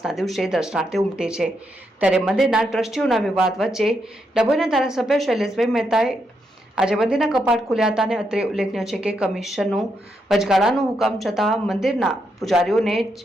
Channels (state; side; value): normal; both; correlation 0.81